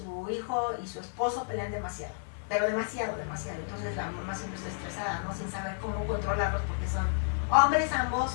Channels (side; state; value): right; silent; digital silence